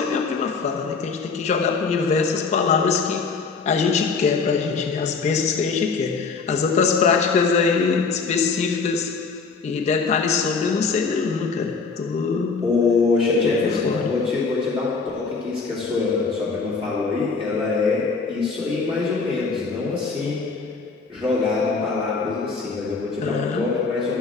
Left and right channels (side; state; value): right; quieter; 4.7 dB